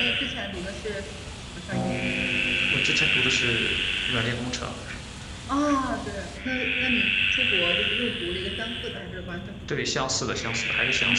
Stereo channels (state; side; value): identical; both; correlation 1.00